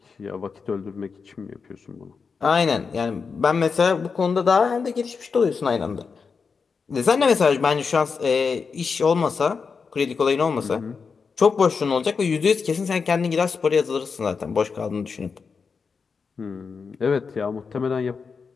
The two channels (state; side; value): quieter; right; 5.3 dB